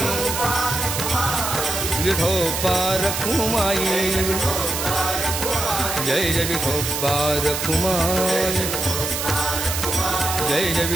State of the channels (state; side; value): noise; right; hiss, 3 dB below the sound